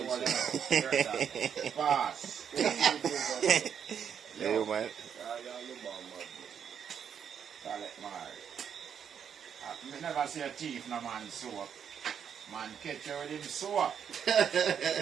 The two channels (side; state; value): left; quieter; 7.9 dB